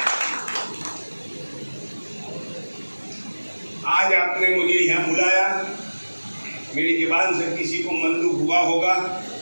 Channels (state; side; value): inverted; both; correlation -1.00